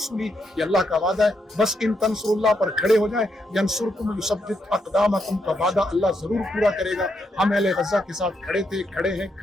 یہ اللہ کا وعدہ ہے. بس ان تنصر اللہ پر کھڑے ہو جائیں. ینصرکم یثبت اقدامکم کا وعدہ اللہ ضرور پورا کرے گا. ہم اہل غزہ کے ساتھ کھڑے تھے، کھڑے ہیں،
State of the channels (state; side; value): normal; both; correlation 0.79